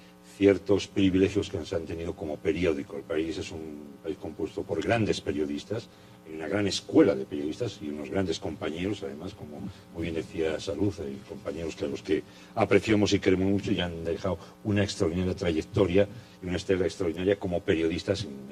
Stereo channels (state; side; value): identical; both; correlation 1.00